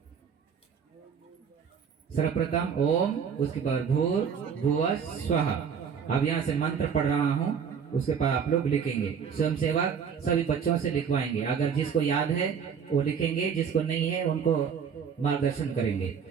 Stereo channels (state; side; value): quieter; left; 7.0 dB